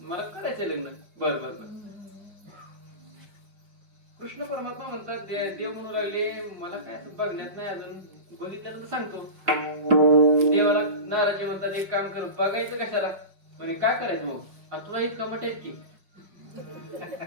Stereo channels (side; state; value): left; late; 5.2 ms